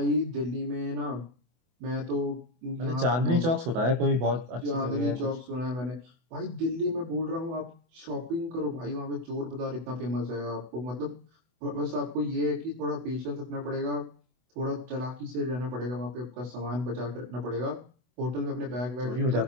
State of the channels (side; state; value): left; late; 24 ms